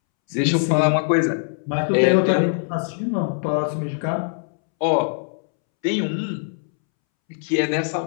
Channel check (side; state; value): right; silent; 64 dB below the other